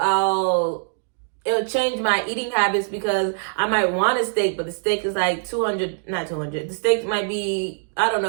it'll change my eating habits, because I might want a steak, but the steak is like the steak might be, I don't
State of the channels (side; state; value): left; silent; digital silence